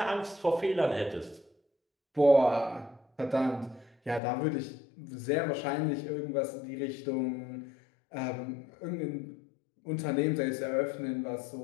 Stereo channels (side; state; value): right; drops out; at 4.2 s